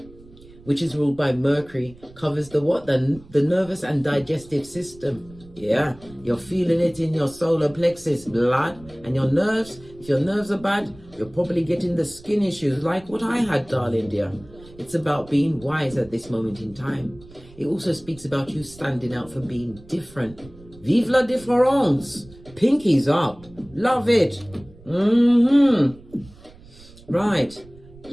which is ruled by Mercury, covers the what? The nervous and digestive system. Yeah, you're feeling it in your solar plexus, blood, and your nerves. If your nerves are bad, you're probably getting the skin issues like what I had, darling dear. It's about being wise at this moment in time. It also speaks about you standing out for being different. Vive la différence. Pinkies up. Love it. Right.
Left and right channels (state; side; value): noise; right; rumble, 22 dB below the sound